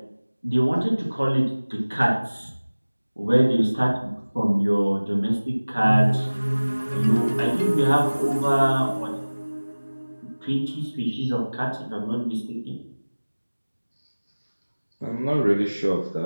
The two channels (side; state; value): both; inverted; correlation -1.00